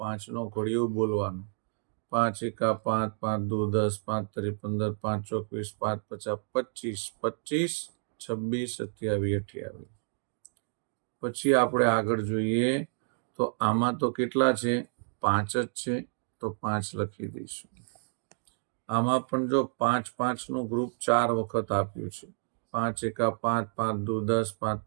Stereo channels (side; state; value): left; silent; digital silence